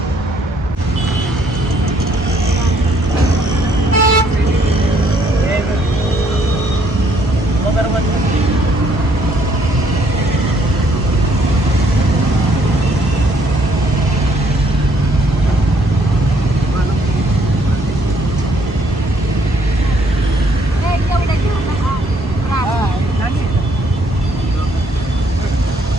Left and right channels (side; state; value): both; normal; correlation 0.67